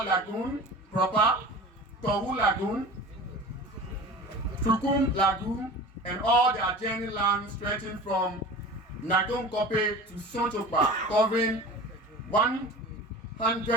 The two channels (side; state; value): both; normal; correlation 0.37